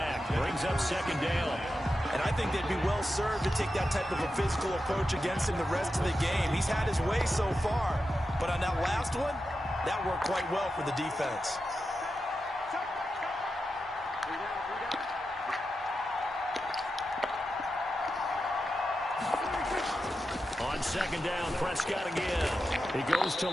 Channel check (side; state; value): both; normal; correlation 0.90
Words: Brings up second down. And I think they'd be well served to take that type of a physical approach against him the rest of the game. He's had his way so far. But on that last one, that worked quite well for the defense. On second down, Prescott again. He goes to